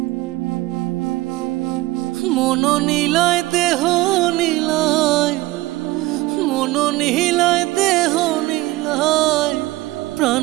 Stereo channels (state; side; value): quieter; left; 18.8 dB